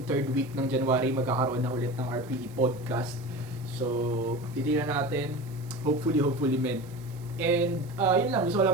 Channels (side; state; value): right; noise; hiss, 25 dB below the sound